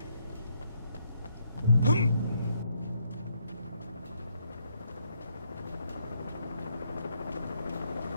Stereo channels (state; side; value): inverted; both; correlation -0.74